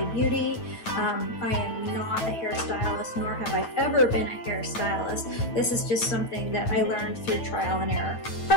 Beauty. I am not a hairstylist, nor have I ever been a hairstylist. This is just something that I learned through trial and error.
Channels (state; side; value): late; right; 9.2 ms